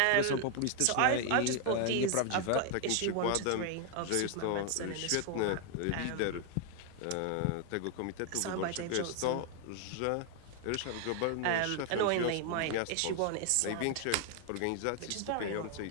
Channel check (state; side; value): different; both; correlation 0.00